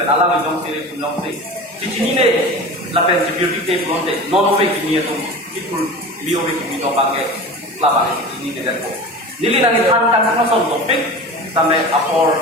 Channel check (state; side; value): normal; both; correlation 0.33